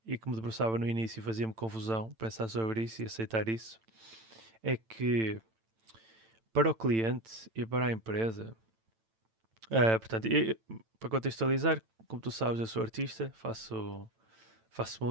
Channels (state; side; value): late; left; 8.9 ms